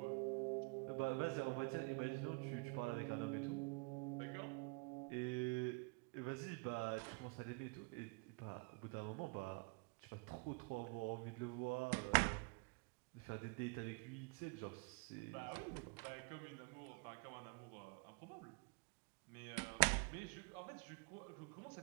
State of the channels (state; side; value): quieter; left; 32.0 dB